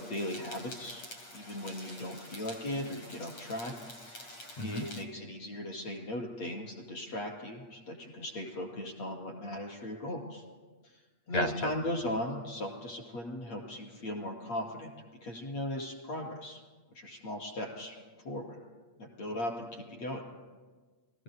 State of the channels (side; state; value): right; late; 8.5 ms